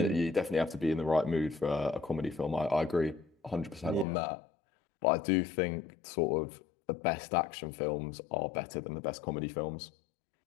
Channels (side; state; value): right; drops out; at 4.0 s